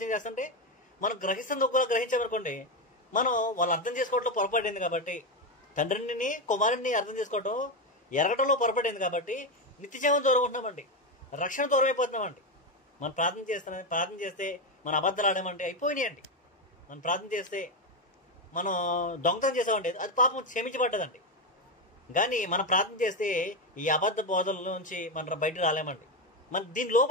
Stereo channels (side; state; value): both; normal; correlation 0.10